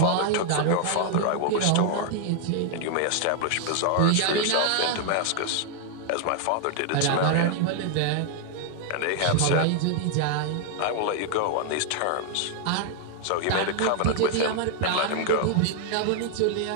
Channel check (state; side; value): different; both; correlation 0.00